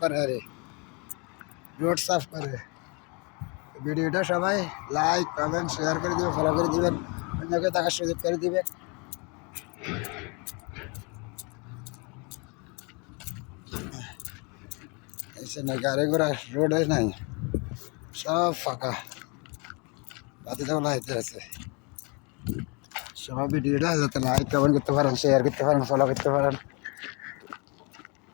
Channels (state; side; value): quieter; right; 31.4 dB